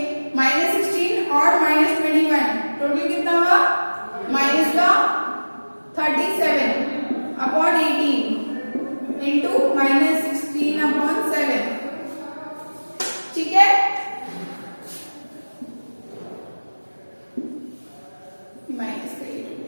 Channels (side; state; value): both; inverted; correlation -1.00